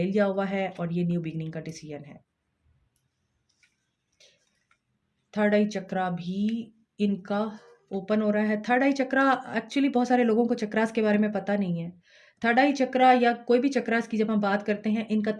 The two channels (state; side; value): identical; both; correlation 1.00